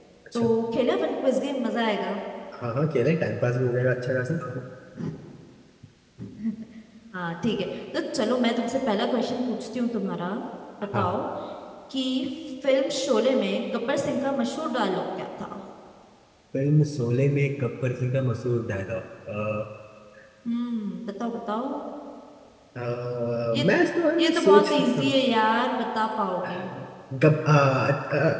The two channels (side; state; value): both; identical; correlation 1.00